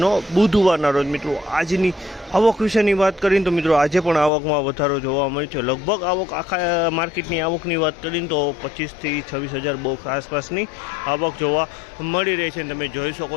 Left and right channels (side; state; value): right; drops out; at 4.3 s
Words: બુધવારના રોજ મિત્રો આજની આવક વિશેની વાત કરીને તો મિત્રો આજે પણ આવકમાં વધારો જોવા મળ્યો છે। લગભગ આવક આખા માર્કેટની આવકની વાત કરીને તો 25 થી 26,000 બોક્સ આસપાસની આવક જોવા મળી રહી છે। તમે જોઈ શકો